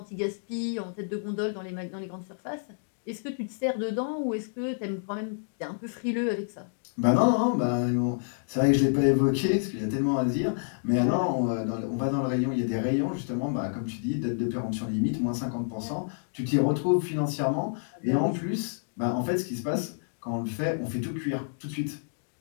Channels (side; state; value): right; silent; digital silence